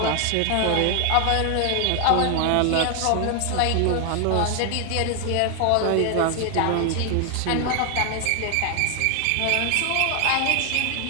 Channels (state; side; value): different; both; correlation 0.00